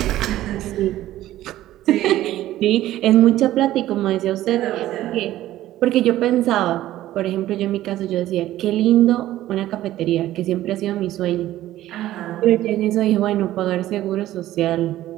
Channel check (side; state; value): left; quieter; 14.3 dB